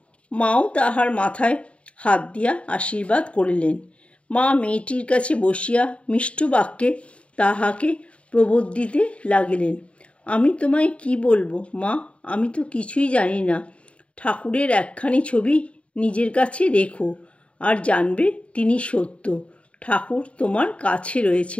মাও তাহার মাথায় হাত দিয়া আশীর্বাদ করিলেন। মা মেয়েটির কাছে বসিয়া মিষ্ট বাক্যে তাহাকে প্রবোধিতে লাগিলেন। আমি তোমায় কি বলবো মা, আমি তো কিছুই জানি না। ঠাকুরের একখানি ছবি নিজের কাছে রেখো, আর জানবে তিনি সত্য। ঠাকুর তোমার কাছে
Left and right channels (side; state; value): right; late; 0.062 ms